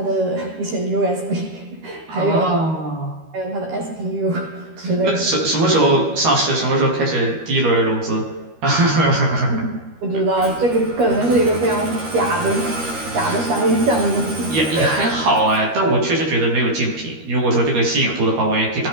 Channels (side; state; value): left; late; 13 ms